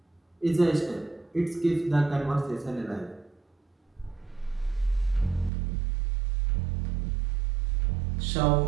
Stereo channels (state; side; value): drops out; left; at 5.5 s